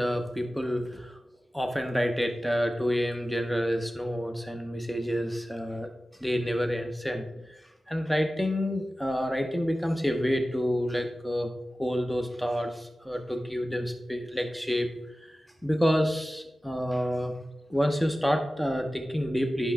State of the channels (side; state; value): both; normal; correlation 0.95